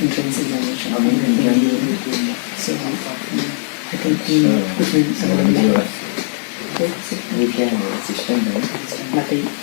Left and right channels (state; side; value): silent; right; digital silence